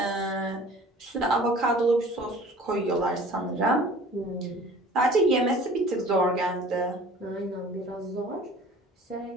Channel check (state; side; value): normal; both; correlation 0.47